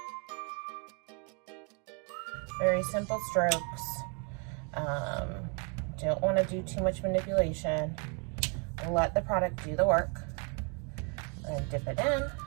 Very simple strokes. Don't want to do too much manipulation. Let the product do the work. And dip it in.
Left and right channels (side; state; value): left; quieter; 36.9 dB